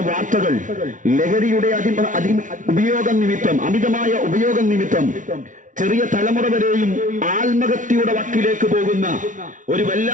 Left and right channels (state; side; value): late; left; 0.37 ms